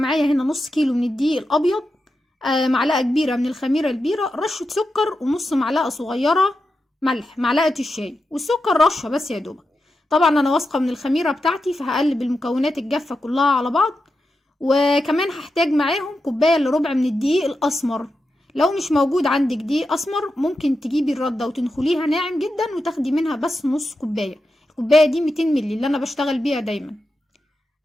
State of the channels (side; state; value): both; normal; correlation 0.89